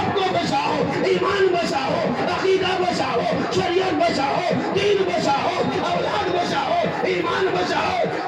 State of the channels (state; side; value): identical; both; correlation 1.00